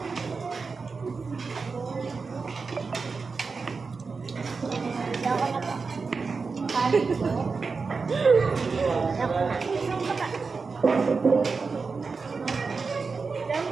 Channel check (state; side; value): quieter; left; 4.6 dB